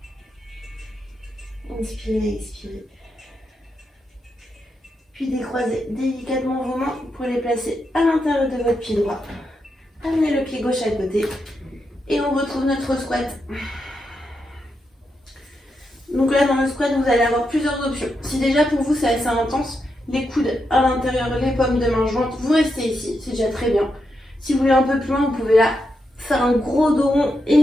Inspirez, expirez. Puis décroisez délicatement vos mains pour les placer à l'intérieur de votre pied droit. Amenez le pied gauche à côté et on retrouve notre squat. Donc là, dans le squat, vous allez avoir plusieurs options. Si déjà pour vous c'est assez intense, les coudes à l'intérieur, les paumes de main jointes, vous restez ici, c'est déjà très bien. Si vous voulez un peu plus loin, vous pouvez là faire un gros dos rond et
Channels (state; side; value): normal; both; correlation 0.84